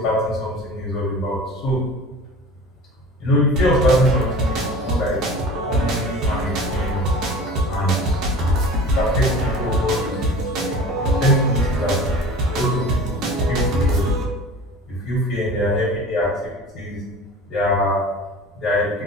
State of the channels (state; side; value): normal; both; correlation 0.39